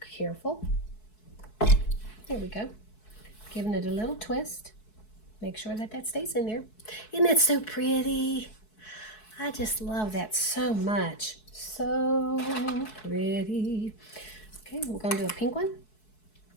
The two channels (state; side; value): late; right; 4.6 ms